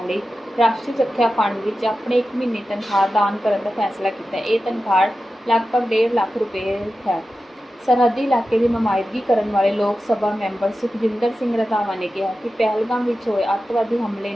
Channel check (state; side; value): normal; both; correlation 0.93